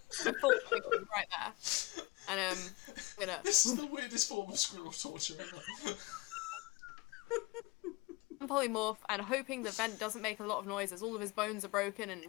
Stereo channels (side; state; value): right; quieter; 24.5 dB